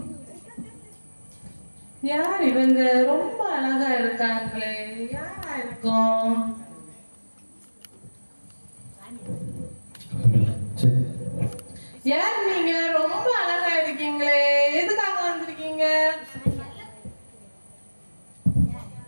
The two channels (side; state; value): both; inverted; correlation -1.00